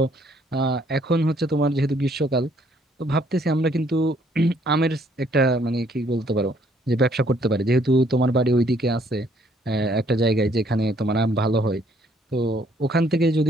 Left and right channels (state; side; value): normal; both; correlation 0.65